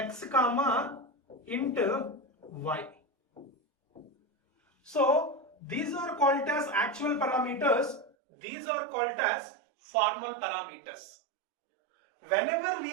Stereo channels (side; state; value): left; drops out; at 8.1 s